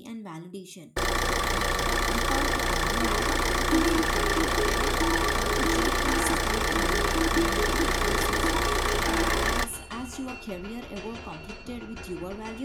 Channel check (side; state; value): both; identical; correlation 1.00